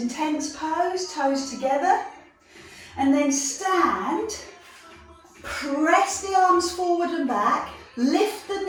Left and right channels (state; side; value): identical; both; correlation 1.00